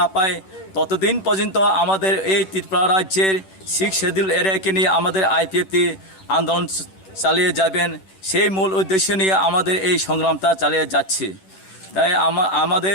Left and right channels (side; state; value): right; late; 10 ms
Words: পায় ততদিন পর্যন্ত আমাদের এই ত্রিপুরা রাজ্যের 6 শিডিউল এরিয়াকে নিয়ে আমাদের আইপিএফটি আন্দোলন চালিয়ে যাবেন। সেই মূল উদ্দেশ্য নিয়ে আমাদের এই সংগ্রামটা চালিয়ে যাচ্ছি। তাই